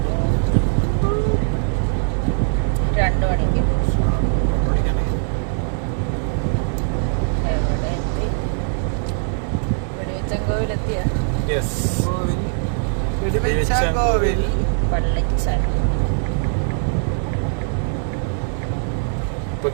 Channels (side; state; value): left; silent; digital silence